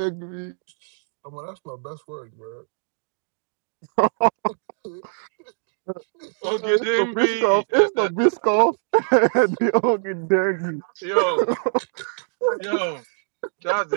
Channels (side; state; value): left; silent; digital silence